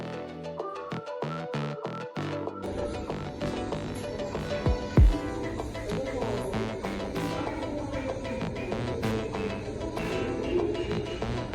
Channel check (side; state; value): both; identical; correlation 1.00